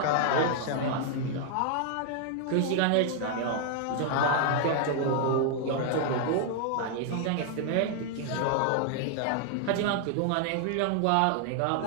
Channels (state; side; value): different; both; correlation 0.00